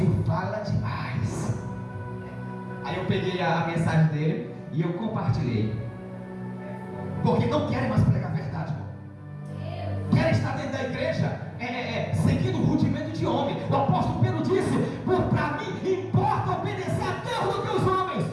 fala demais. Aí eu peguei a mensagem dele e eu compartilhei, porque não querem mais pregar a verdade, irmão. Querem estar dentro da igreja seguindo o rudimento de homem. O apóstolo Pedro disse: para mim importa obedecer a Deus do que os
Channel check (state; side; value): identical; both; correlation 1.00